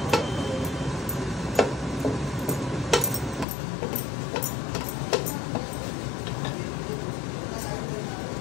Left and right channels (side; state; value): right; drops out; at 3.5 s